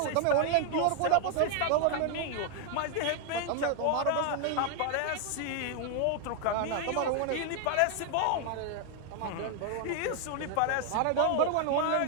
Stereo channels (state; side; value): different; both; correlation 0.00